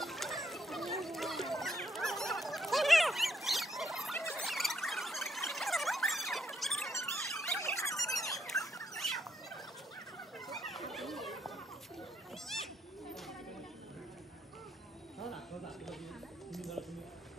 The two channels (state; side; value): normal; both; correlation 0.74